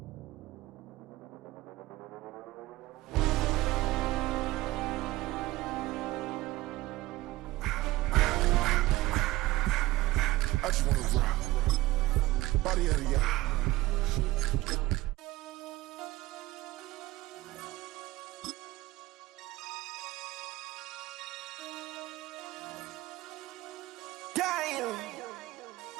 I just wanna rock. Body out of y'all.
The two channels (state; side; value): quieter; left; 18.3 dB